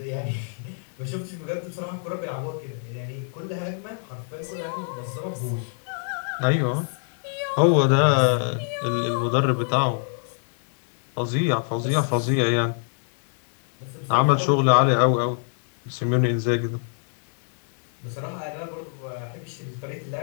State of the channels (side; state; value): right; silent; 61 dB below the other